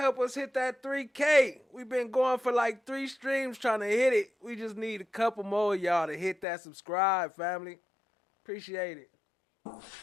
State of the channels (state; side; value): drops out; right; at 6.5 s